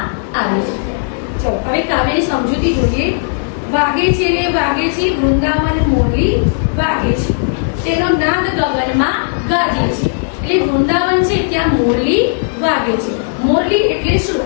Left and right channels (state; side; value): silent; right; digital silence